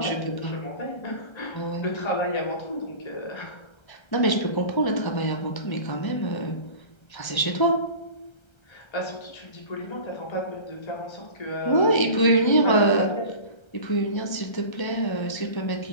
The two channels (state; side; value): late; right; 1.3 ms